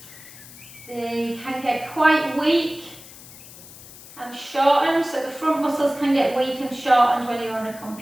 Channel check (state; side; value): noise; left; hiss, 18 dB below the sound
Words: They can get quite weak and shortened. So the front muscles can get weak and shortened when you're on a